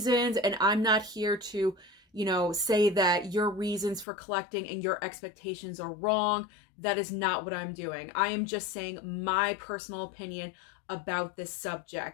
and I'm not here to say that your reasons for collecting and your expectations are wrong. That is not what I'm doing. I am just saying my personal opinion about this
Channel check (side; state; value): right; drops out; at 4.0 s